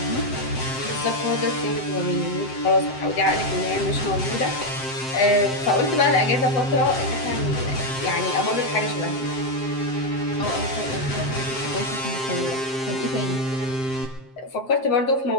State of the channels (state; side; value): late; right; 7.6 ms